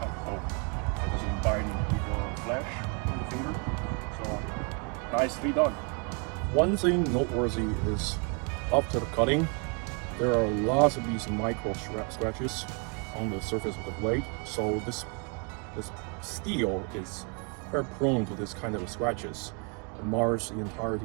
It doesn't bind your flesh on the finger. So nicely done. One thing noteworthy is after the cutting, there are lots of these micro scratches on the surface of the blade. So this steel is very prone to this kind of scratches. It mars the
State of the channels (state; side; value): quieter; left; 35.9 dB